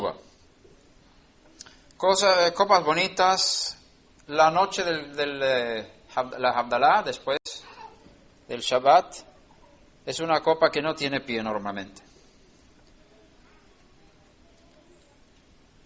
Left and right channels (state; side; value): identical; both; correlation 1.00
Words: Copas bonitas. La noche la Havdalah, después del Shabbat, es una copa que no tiene pie normalmente.